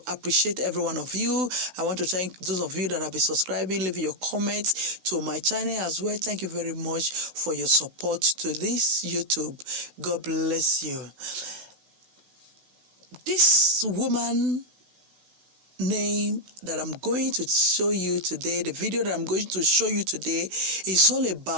appreciate every one of you. I want to thank those of you that have been subscribing, leaving your comments to my channel as well. Thank you very much for your support to this YouTube. God bless you. This woman name that I'm going to show you today, the video that I'm going to show you today, is all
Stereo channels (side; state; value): left; late; 16 ms